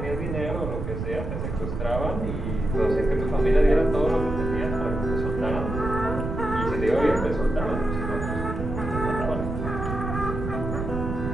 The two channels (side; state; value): right; noise; rumble, 4 dB below the sound